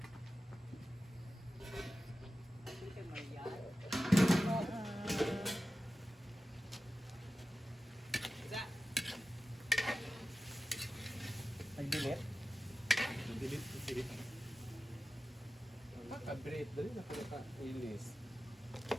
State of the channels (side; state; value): both; normal; correlation 0.93